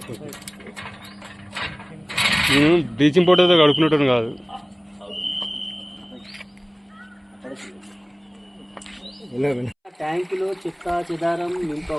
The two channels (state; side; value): identical; both; correlation 1.00